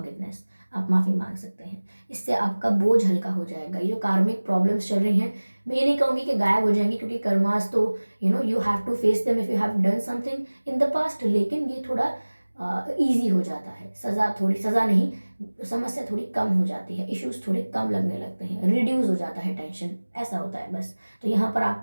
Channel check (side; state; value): both; inverted; correlation -1.00